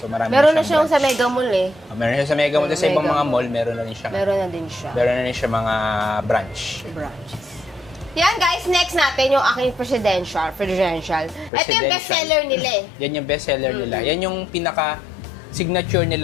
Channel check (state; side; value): drops out; right; at 11.5 s